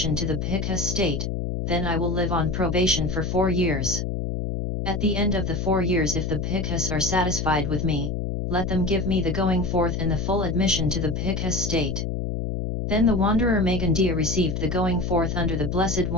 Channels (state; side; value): noise; left; hum, 2 dB below the sound